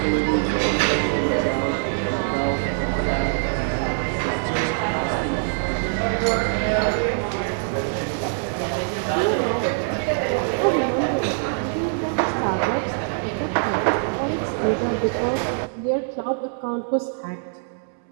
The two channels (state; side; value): silent; left; 63 dB below the other